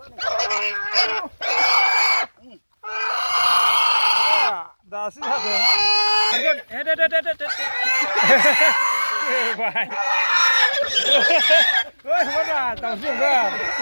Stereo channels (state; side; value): inverted; both; correlation -1.00